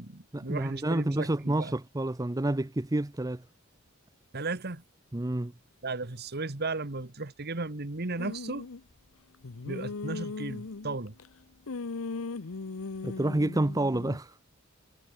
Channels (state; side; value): normal; both; correlation 0.66